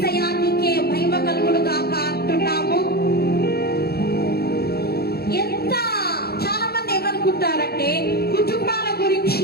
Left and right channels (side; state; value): right; late; 0.46 ms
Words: నీకే మహిమ కలుగును గాక అంటున్నాము. చాలా మంది